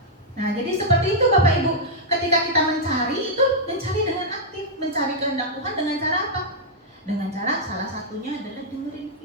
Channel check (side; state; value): both; normal; correlation -0.06